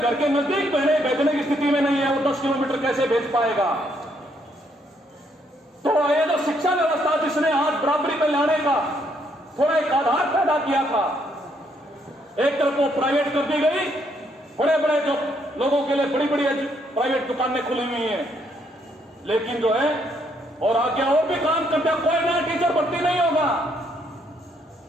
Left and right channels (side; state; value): both; normal; correlation 0.72